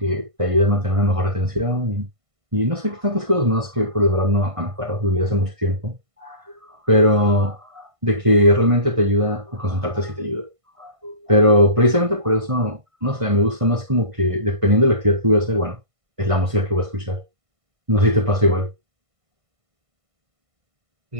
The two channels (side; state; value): left; late; 1.5 ms